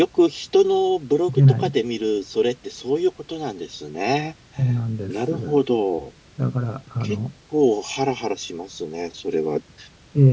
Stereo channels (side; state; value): both; identical; correlation 1.00